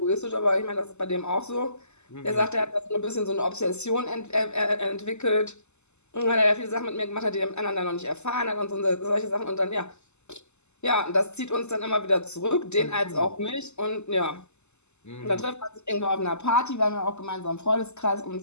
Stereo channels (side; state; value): right; late; 0.82 ms